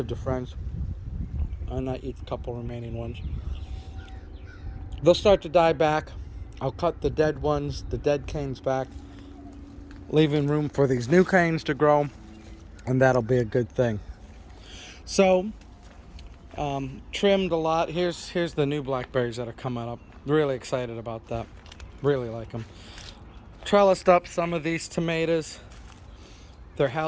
to friends. And I eat a couple remaining ones. They'll start to die back. I'll cut the dead ones, the dead canes back, leaving room for these new canes to grow, and that'll be a good thing. So, trimmed a lot. Here's the new blackberries that are coming up. Really excited about that. Really like them. Trellised up some of these tomatoes. They're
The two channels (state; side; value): identical; both; correlation 1.00